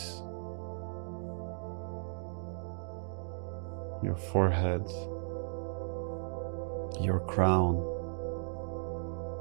your forehead, your crown,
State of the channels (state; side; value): silent; left; digital silence